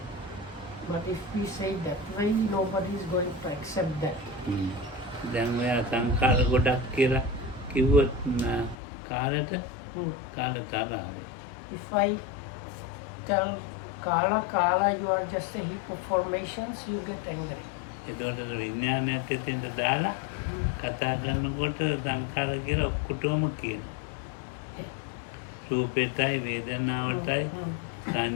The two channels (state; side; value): drops out; right; at 8.8 s